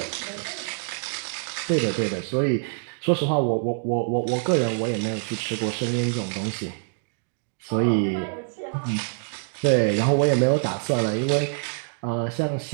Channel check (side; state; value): left; silent; digital silence